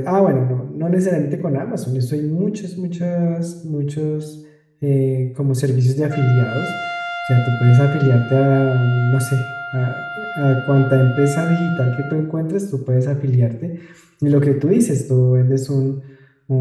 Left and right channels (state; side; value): identical; both; correlation 1.00